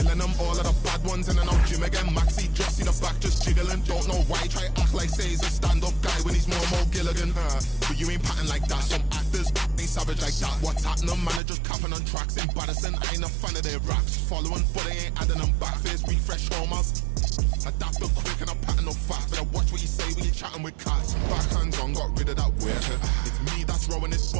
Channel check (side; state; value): left; drops out; at 11.4 s